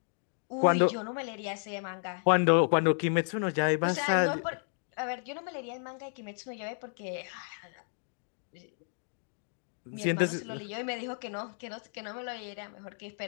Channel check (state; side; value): silent; right; 56 dB below the other